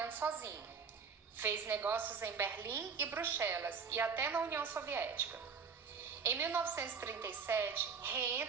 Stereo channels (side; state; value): left; quieter; 5.9 dB